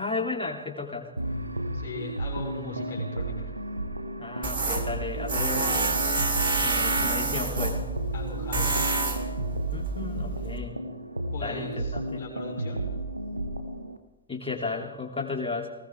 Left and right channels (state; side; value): inverted; both; correlation -0.45